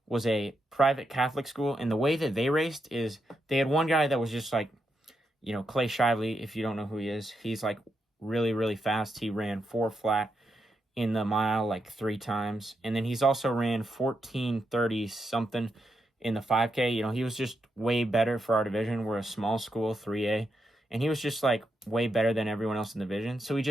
was a private Catholic school, and the way that they raced is they had one guy that was just like, you know, Clay Shively, if you don't know who he is, he's like really, really fast. He ran 4 flat in the mile like 3 times. And then he's also ran 14:30 something in the 5K. You know, he was just way better for our division. We're a small school, 3A. And he was just like way better than everyone else in the division. So he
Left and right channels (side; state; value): both; normal; correlation 0.83